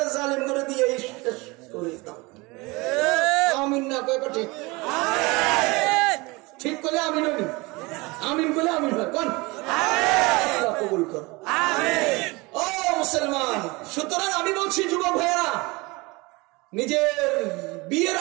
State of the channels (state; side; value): quieter; left; 24.5 dB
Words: করে দিয়ে শেষ করে দাও। আমিন না কয় ঠিক? ঠিক করলে আমিন হবি, আমিন করলে আমিন হয়। কোন কবুল কর ও মুসলমান। সুতরাং আমি বলছি যুবক ভাইয়েরা, নিজের বিয়ের